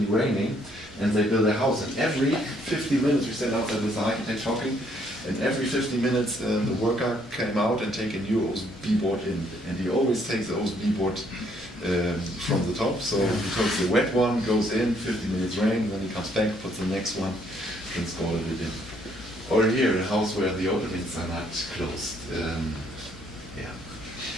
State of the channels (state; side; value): normal; both; correlation 0.67